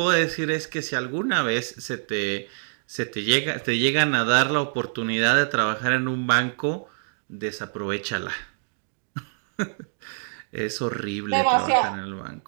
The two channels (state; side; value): silent; left; digital silence